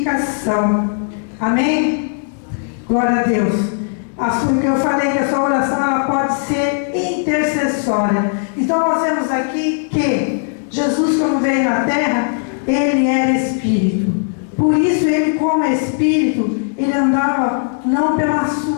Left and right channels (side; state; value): right; silent; digital silence